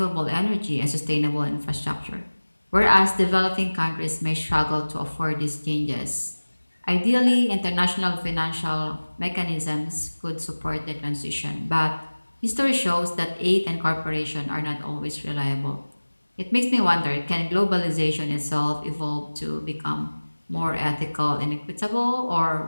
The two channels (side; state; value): both; inverted; correlation -1.00